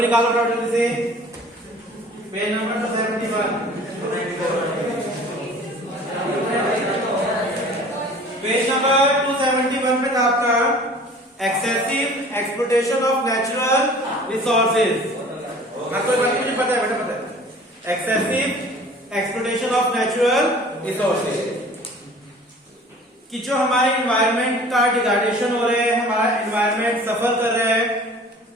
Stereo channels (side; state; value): both; normal; correlation 0.47